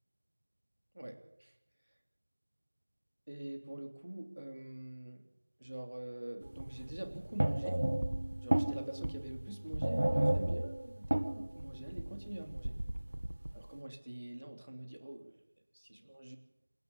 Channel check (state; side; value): inverted; both; correlation -1.00